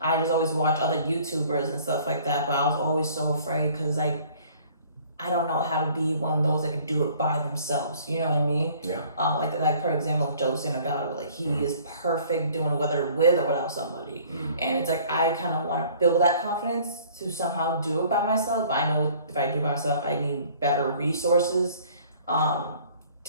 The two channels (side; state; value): both; inverted; correlation -0.54